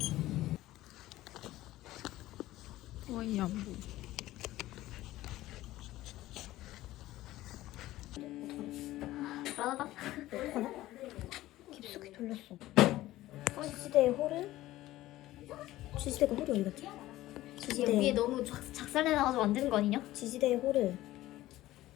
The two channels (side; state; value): right; quieter; 16.0 dB